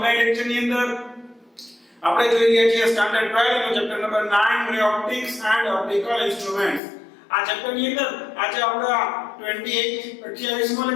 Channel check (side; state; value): right; drops out; at 6.8 s